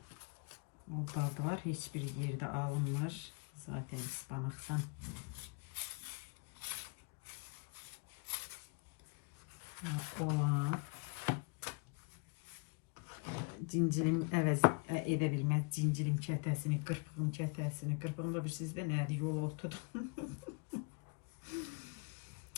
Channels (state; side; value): quieter; right; 32.9 dB